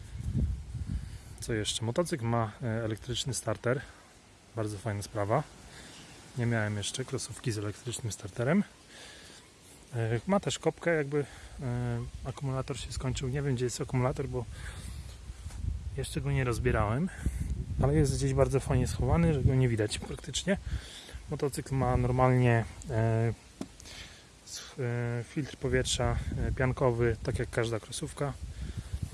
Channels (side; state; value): both; identical; correlation 1.00